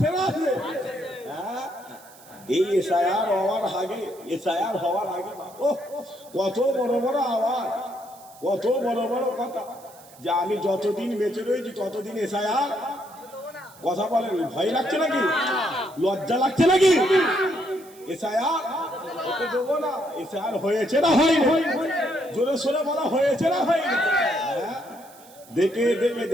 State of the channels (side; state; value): right; noise; hiss, 23 dB below the sound